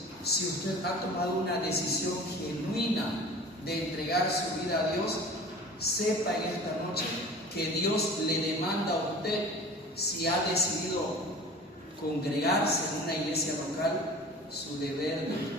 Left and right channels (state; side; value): normal; both; correlation 0.41